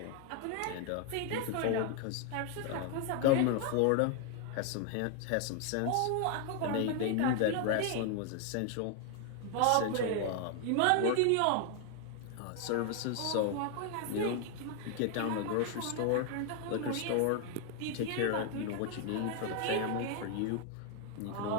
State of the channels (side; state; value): both; different; correlation 0.00